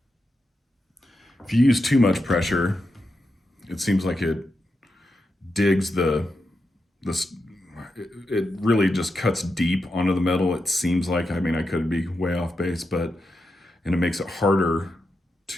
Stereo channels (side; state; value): both; normal; correlation 0.87